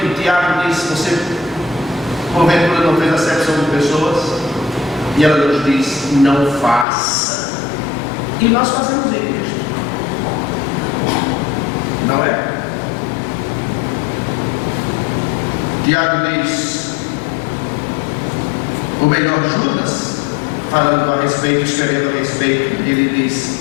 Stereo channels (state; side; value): drops out; right; at 6.9 s